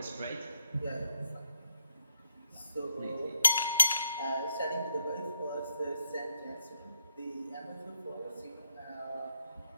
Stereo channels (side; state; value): both; inverted; correlation -0.80